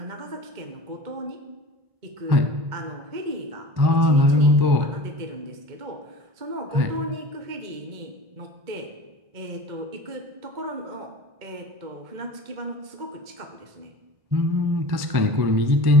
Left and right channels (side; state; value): left; late; 1.1 ms